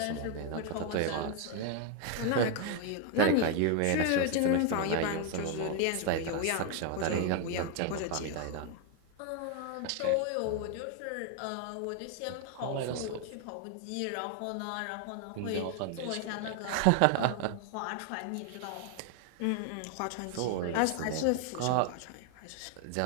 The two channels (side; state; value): both; different; correlation 0.01